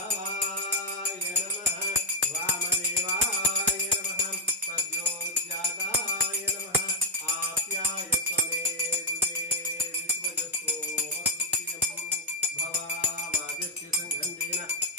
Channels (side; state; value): both; normal; correlation 0.00